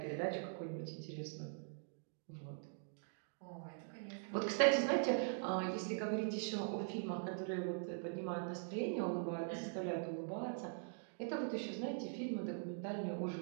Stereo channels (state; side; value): silent; left; digital silence